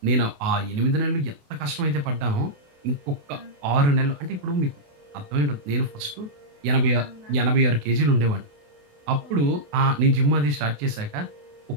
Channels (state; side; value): late; left; 28 ms